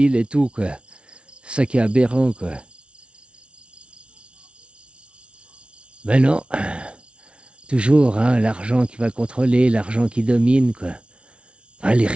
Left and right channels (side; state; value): left; late; 0.059 ms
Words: et tout, quoi. C'est ça qui est aberrant, quoi. Ben non, toujours, hein, l'argent qui va contrôler, l'argent qui domine, quoi. Ah, les